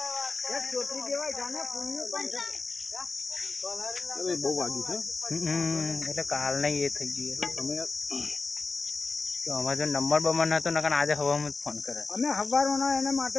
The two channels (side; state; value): right; quieter; 4.1 dB